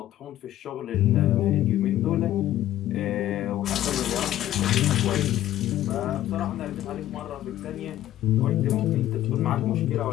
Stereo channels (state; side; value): quieter; right; 13.4 dB